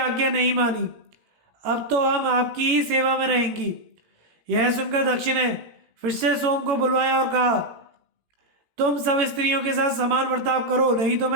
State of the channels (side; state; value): left; late; 17 ms